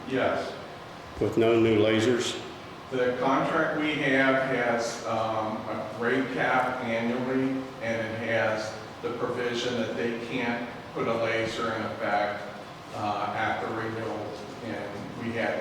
Yes. With no new lasers? The contract we have has a rate cap annually, and it has the provision that they can't put a laser in effect at the renewal. And we had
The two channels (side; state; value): both; identical; correlation 1.00